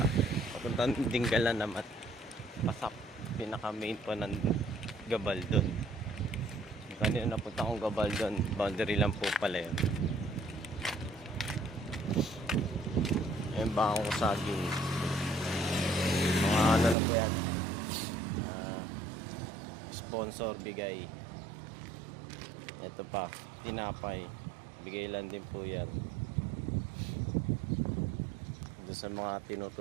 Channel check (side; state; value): left; drops out; at 16.9 s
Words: Papunta ng Dingalan naman. Pasap. Pinaka main po ng Gabaldon. Kanina napunta akong Gabaldon. Boundary lang po pala yun. Yung bangong saging. Mga ano na po yan. Sponsor bigay. Ito pa, tinapay. Bigay lang din po yan. Doon sa mga